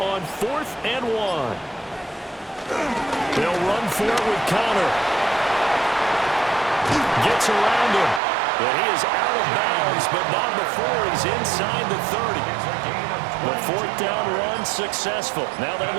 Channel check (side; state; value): left; drops out; at 8.2 s